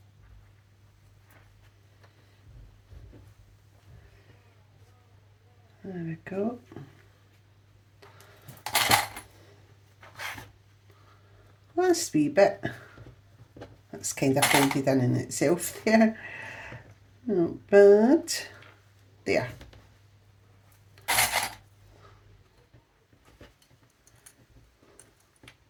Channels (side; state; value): both; identical; correlation 1.00